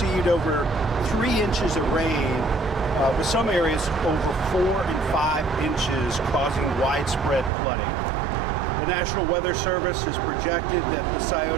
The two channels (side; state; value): left; drops out; at 7.5 s